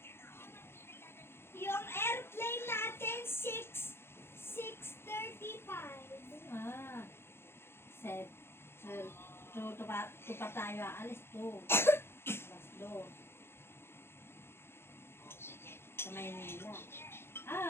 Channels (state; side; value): late; right; 0.12 ms